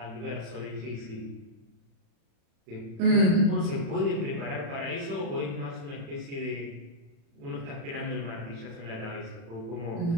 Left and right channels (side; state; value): left; late; 36 ms